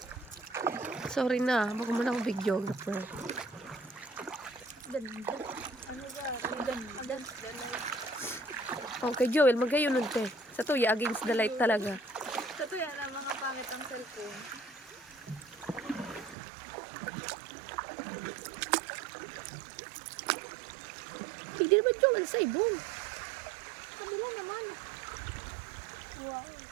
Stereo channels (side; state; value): left; drops out; at 16.4 s